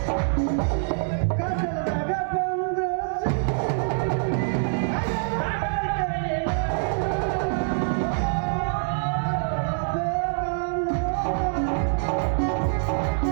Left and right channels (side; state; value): left; silent; digital silence